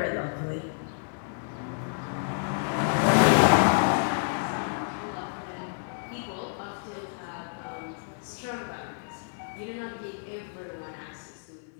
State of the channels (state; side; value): silent; right; digital silence